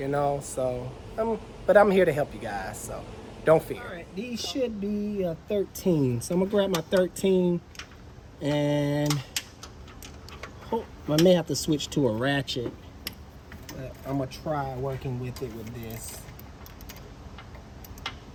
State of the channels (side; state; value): both; identical; correlation 1.00